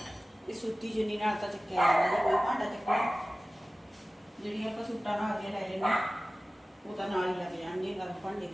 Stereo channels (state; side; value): normal; both; correlation 0.97